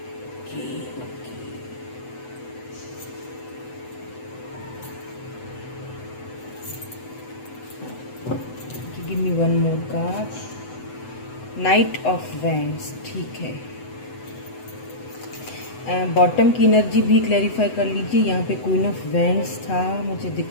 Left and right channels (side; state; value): right; late; 8.0 ms